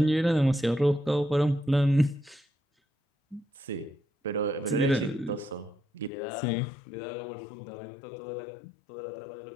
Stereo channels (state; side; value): drops out; right; at 6.1 s